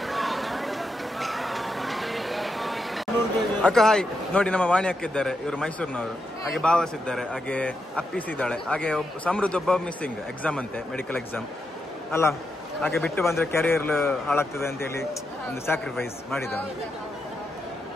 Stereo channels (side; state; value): both; normal; correlation 0.84